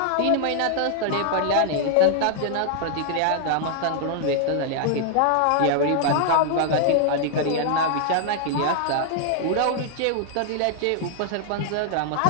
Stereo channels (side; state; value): both; different; correlation -0.01